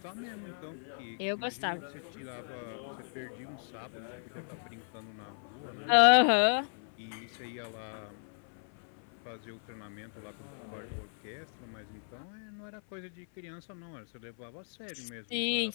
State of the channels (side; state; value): right; silent; 54 dB below the other